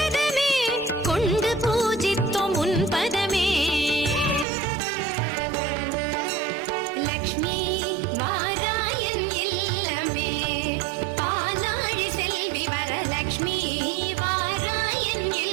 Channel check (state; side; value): drops out; left; at 4.5 s